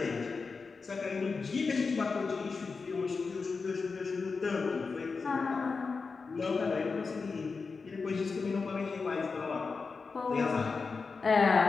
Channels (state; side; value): quieter; right; 4.6 dB